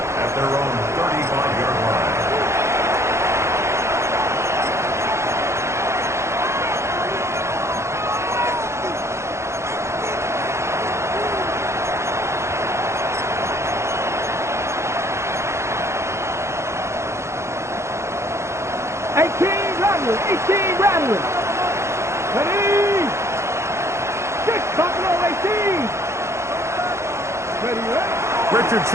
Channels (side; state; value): left; late; 0.13 ms